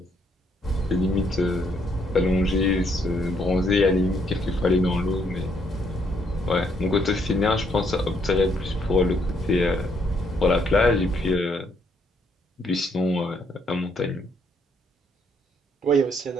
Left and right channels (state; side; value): normal; both; correlation 0.71